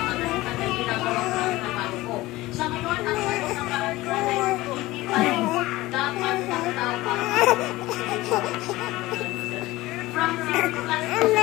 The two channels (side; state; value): right; quieter; 18.6 dB